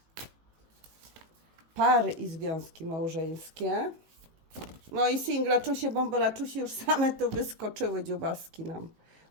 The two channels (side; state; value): left; late; 19 ms